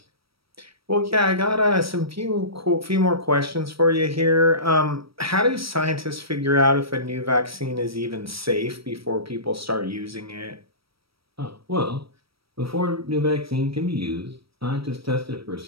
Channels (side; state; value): left; late; 0.75 ms